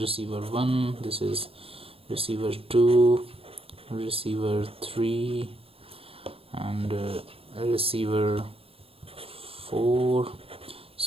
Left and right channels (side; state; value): left; late; 0.28 ms